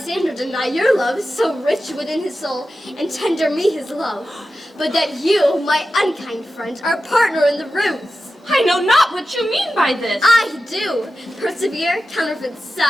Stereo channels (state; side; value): normal; both; correlation 0.92